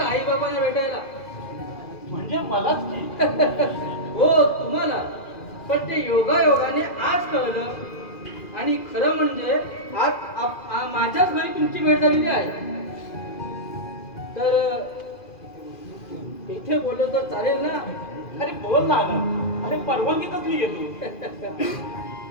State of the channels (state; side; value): late; right; 2.4 ms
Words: आई बाबांना भेटायला. म्हणजे मलाच की. हो, तुम्हाला. पण ते योगायोगाने आज कळलं. आणि खरं म्हणजे आज माझ्याच घरी तुमची भेट झालेली आहे. तर इथे बोललो तर चालेल ना? अरे बोल ना आनंद. अरे परवानगी कसली घेतो?